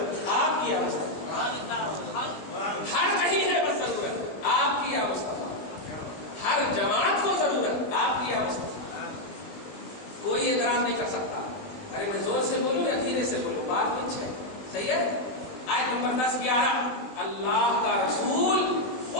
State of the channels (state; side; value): late; right; 20 ms